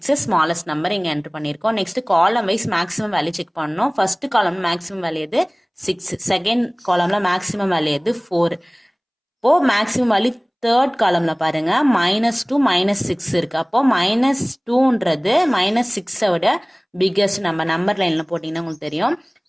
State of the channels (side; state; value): both; identical; correlation 1.00